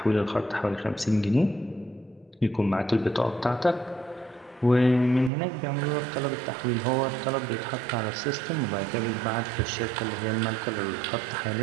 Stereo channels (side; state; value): left; drops out; at 5.3 s